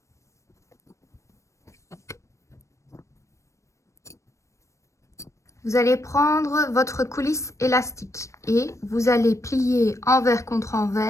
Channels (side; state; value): right; late; 0.15 ms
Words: Vous allez prendre votre coulisse élastique et vous allez plier envers contre